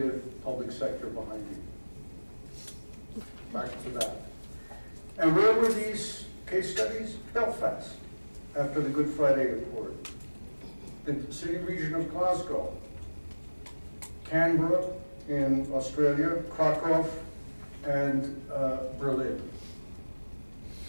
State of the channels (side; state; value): both; inverted; correlation -1.00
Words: public sector behind you. Back to that. And where were these case studies? Belfast, after the Good Friday Accord. The city region of Glasgow. Canberra in Australia. Krakow and Berlin